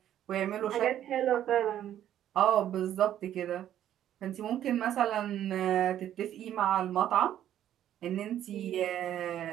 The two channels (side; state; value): left; quieter; 11.2 dB